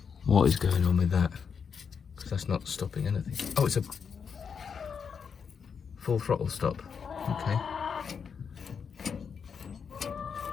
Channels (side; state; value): right; quieter; 6.5 dB